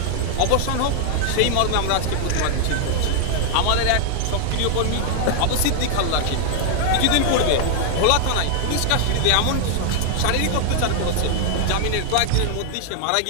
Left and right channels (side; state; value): both; different; correlation 0.00